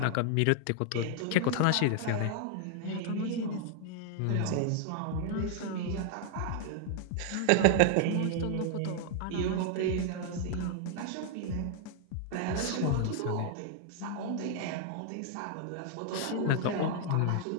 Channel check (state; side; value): different; both; correlation 0.00